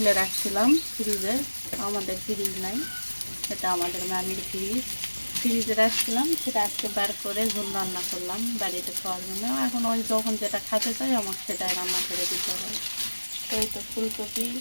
রাখছিলাম ফ্রিজে। আমাদের ফ্রিজ নাই, এটা আমাদের মামির ফ্রিজে রাখছিলাম। সেটা আজকে বার করে ঝোল রান্না করলাম বাড়িতে খাওয়ার জন্য। এখন ওই যখন যেটা খেতে চাই আমাকে সেটাই রান্না করে দিতে হয়। তো এই তো ফুলকপি,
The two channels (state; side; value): inverted; both; correlation -1.00